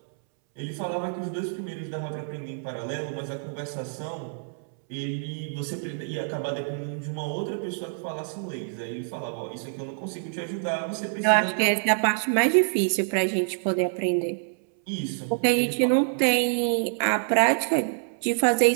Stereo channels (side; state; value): left; silent; 60 dB below the other